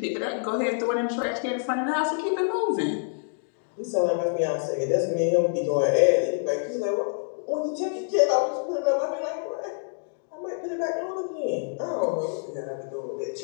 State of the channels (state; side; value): silent; right; digital silence